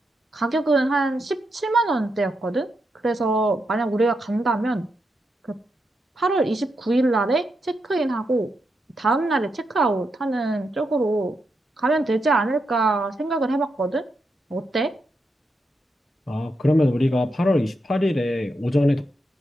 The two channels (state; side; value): normal; both; correlation 0.84